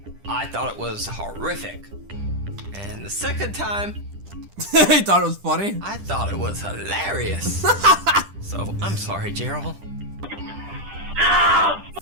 I thought it was horrific. And the second time, He thought it was funny? I thought it was hilarious. So, I'm sorry, Gerald.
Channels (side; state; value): left; late; 10 ms